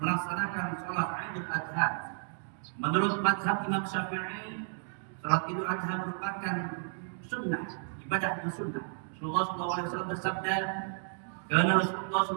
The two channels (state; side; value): silent; left; digital silence